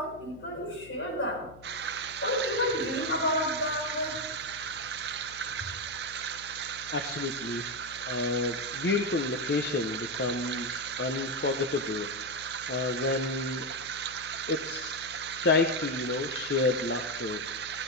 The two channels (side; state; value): left; noise; hum, 20 dB below the sound